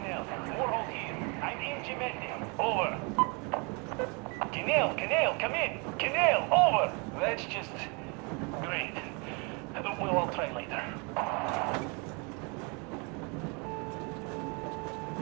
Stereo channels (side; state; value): left; quieter; 32.2 dB